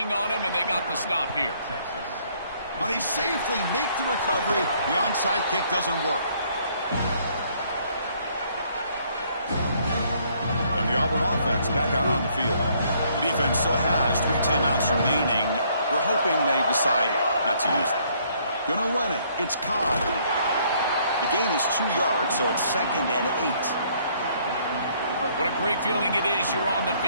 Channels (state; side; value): inverted; both; correlation -0.65